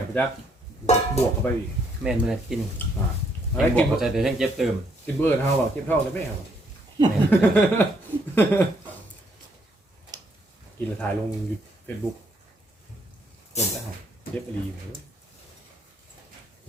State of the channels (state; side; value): normal; both; correlation 0.70